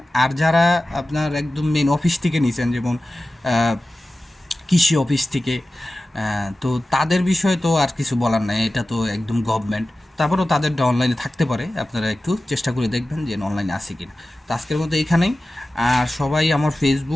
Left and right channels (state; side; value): normal; both; correlation 0.95